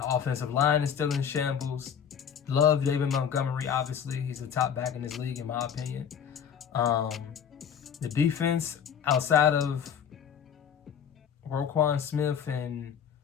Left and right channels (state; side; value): quieter; right; 7.9 dB